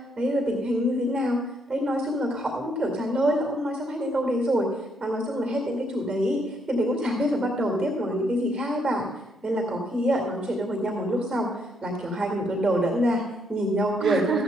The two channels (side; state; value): both; normal; correlation 0.73